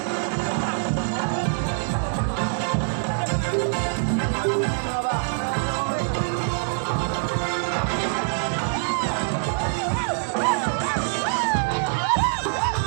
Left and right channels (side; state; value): left; silent; 62 dB below the other